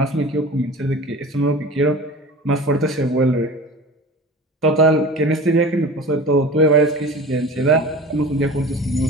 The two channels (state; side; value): normal; both; correlation 0.37